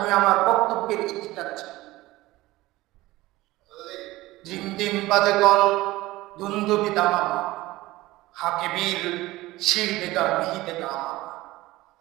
আমার বক্তব্যের ইতি টানছি। জিম জিম বাজে গন, দুন্দুবি দামামা, হাকে বীর শির বেগা বিহি দেগা আমা,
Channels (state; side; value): quieter; left; 18.4 dB